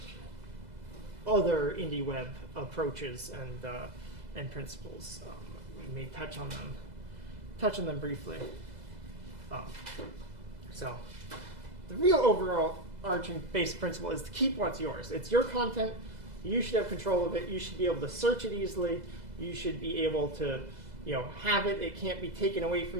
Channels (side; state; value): left; late; 2.0 ms